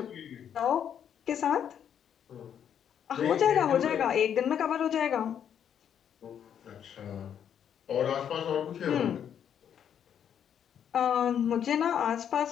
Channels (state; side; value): quieter; right; 8.8 dB